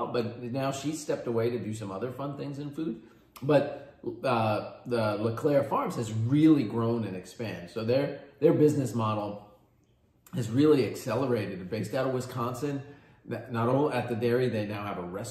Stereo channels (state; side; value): identical; both; correlation 1.00